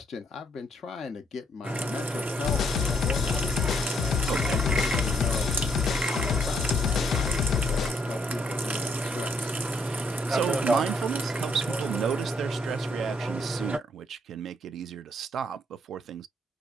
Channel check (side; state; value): both; normal; correlation 0.72